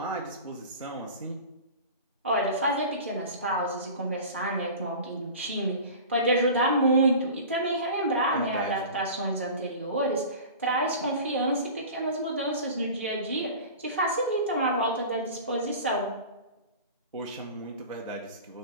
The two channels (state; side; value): inverted; both; correlation -0.37